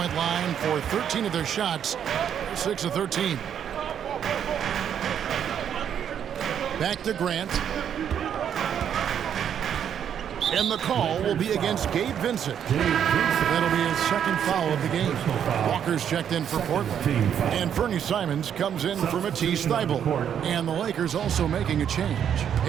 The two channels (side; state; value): left; quieter; 8.8 dB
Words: line for 13 of their shots. 6 of 13. Back to Grant. And the call will be against Gabe Vincent. That'll be his second foul of the game. Walker's checked in for Portland. And Fernie Simons comes in for Matisse Thybulle. And the Lakers also making a change.